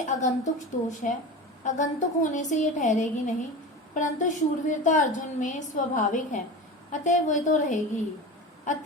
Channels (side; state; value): both; normal; correlation 0.29